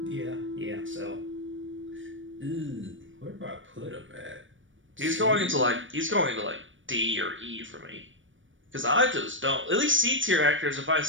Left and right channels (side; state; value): left; late; 0.56 ms